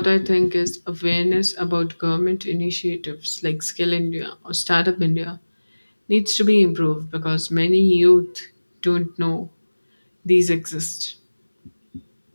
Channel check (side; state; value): both; inverted; correlation -1.00